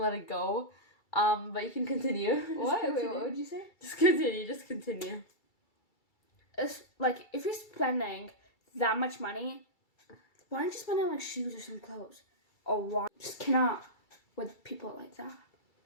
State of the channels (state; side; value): late; right; 2.3 ms